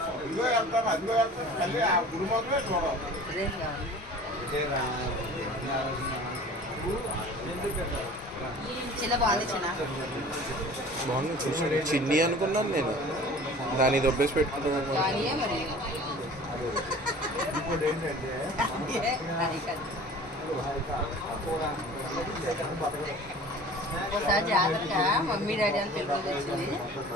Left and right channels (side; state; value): both; normal; correlation 0.44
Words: ఇదిగో వెళ్తాను అదిగో వెళ్తాను తల్లి ఆ గుడి మొదలే చూడాలి. బాగుంది చూసాను. చిన్ని అనుకున్నాను నేను, దాన్ని దొబ్బేసి పెట్టుకున్నాను. ఇంకోటి ఏంటంటే ఒకసారి జాగ్రత్తగా మమ్మీ డాడీ అని పెళ్ళి వచ్చింది.